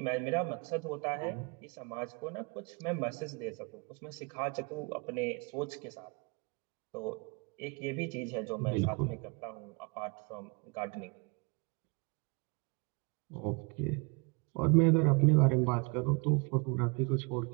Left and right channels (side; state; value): left; quieter; 31.4 dB